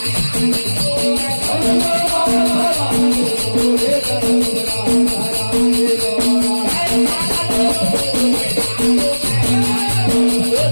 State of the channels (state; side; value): inverted; both; correlation -1.00